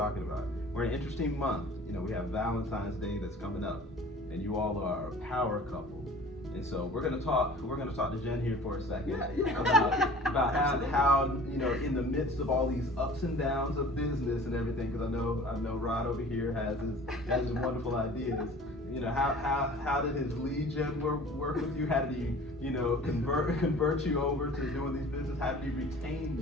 about. We're in an interesting month. You know, we have Valentine's Day that's coming up, and you all are a power couple. And so we're gonna talk to Jen here for a second about how you know, in the midst of all these ups and downs of business and everything, because I know Rod over here has his wonderful ideas. You know, how did his lead gen work with you? How did he, you know, convert you over to doing these business? How did he retain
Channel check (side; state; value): both; normal; correlation 0.45